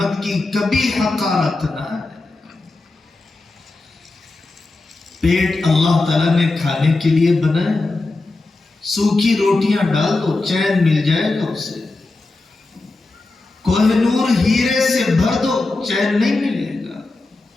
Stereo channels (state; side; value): quieter; right; 3.2 dB